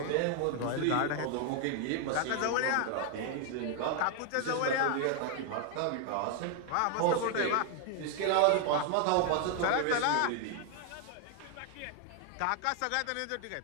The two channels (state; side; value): different; both; correlation 0.00